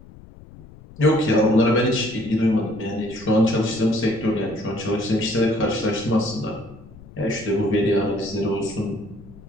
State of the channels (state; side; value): noise; left; rumble, 20 dB below the sound